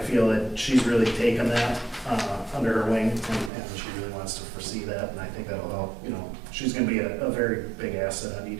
that she's really taken that under her wing, and she really wants to foresee that, and I think that'll help. She's gonna be a very big asset on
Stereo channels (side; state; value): left; drops out; at 3.5 s